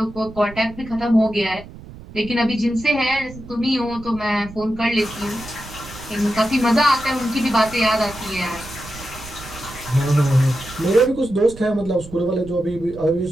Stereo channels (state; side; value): noise; right; rumble, 16 dB below the sound